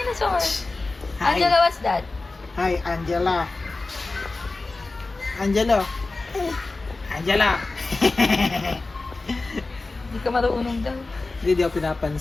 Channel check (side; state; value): right; quieter; 3.4 dB